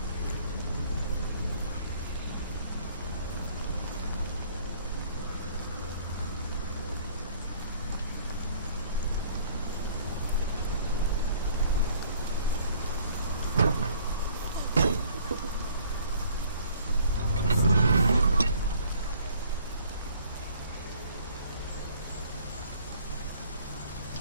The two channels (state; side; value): inverted; both; correlation -0.57